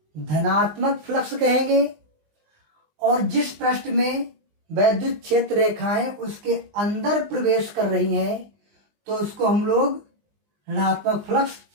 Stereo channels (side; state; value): left; late; 19 ms